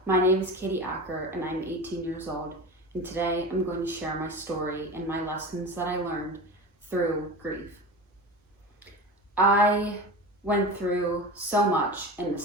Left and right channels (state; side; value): normal; both; correlation 0.30